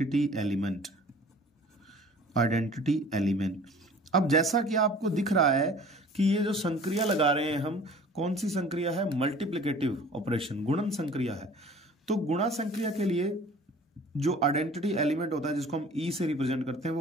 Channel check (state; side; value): normal; both; correlation 0.48